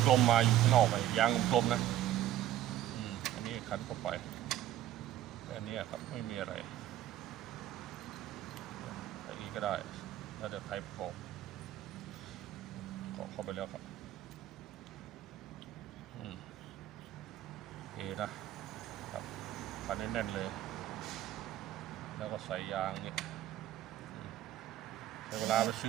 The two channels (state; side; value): quieter; left; 12.9 dB